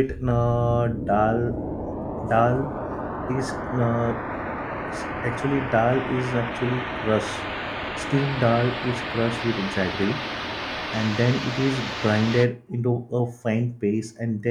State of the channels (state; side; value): identical; both; correlation 1.00